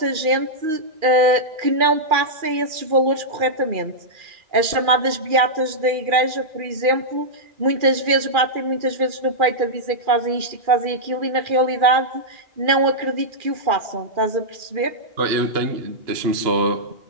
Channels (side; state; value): left; late; 2.4 ms